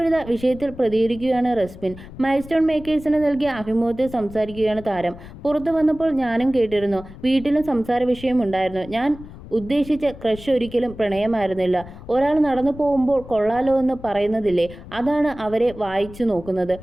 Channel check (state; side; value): noise; left; rumble, 16 dB below the sound